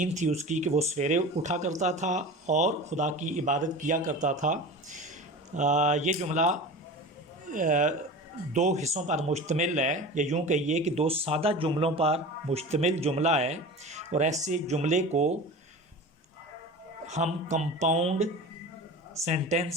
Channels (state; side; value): normal; both; correlation 0.34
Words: थी उसकी कि वो सवेरे उठा करता था और खुदा की इबादत किया करता था। ये जुमला दो हिस्सों पर मुश्तमिल है, या यूँ कहिए कि दो सादा जुमलों पर मुश्तमिल जुमला है। और ऐसे जुमले को हम कंपाउंड